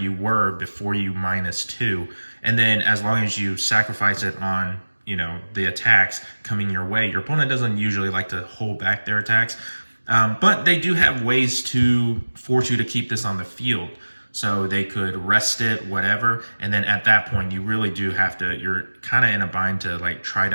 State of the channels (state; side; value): inverted; both; correlation -1.00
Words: were before you -2. And then as long as you sacrifice it on, the attacks coming your way, your opponent doesn't usually like to hold back their attacks. But they do have ways to force you to keep this on the field. So they could rest it, whatever, and then at that point, you really do have to, you're kind of in a bind to like try